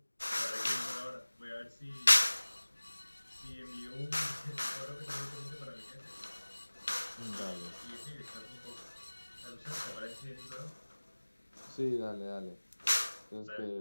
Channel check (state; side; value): inverted; both; correlation -1.00